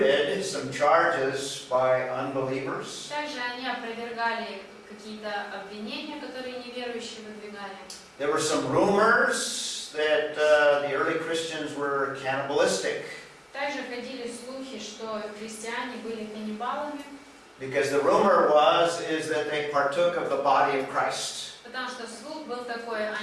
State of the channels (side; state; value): both; identical; correlation 1.00